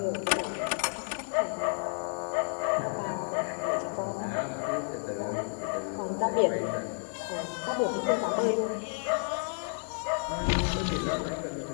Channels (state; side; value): silent; right; digital silence